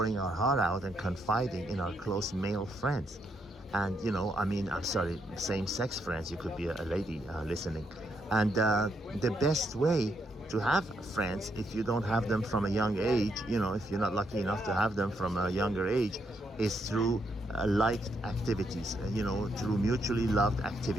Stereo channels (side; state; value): both; normal; correlation 0.77